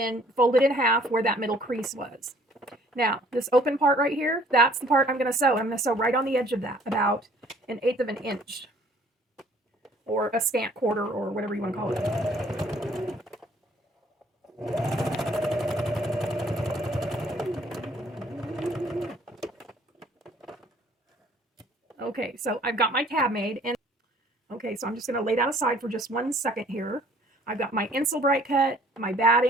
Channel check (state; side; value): normal; both; correlation 0.57